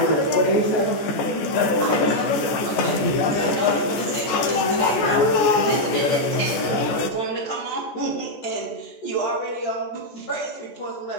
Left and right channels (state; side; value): late; right; 14 ms